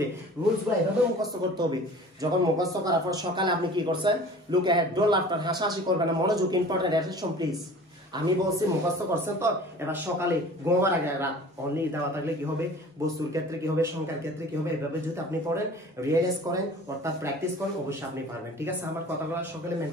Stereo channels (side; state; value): both; normal; correlation 0.44